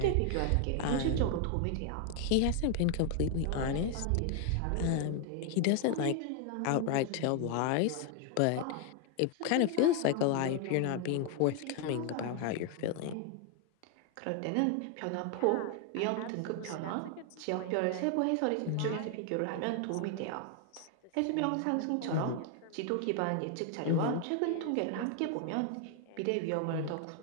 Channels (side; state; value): both; different; correlation 0.00